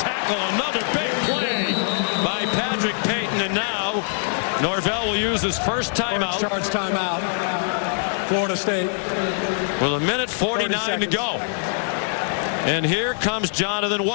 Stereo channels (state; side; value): silent; right; 63 dB below the other